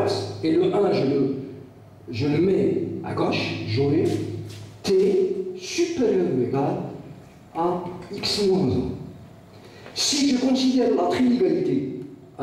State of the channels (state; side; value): identical; both; correlation 1.00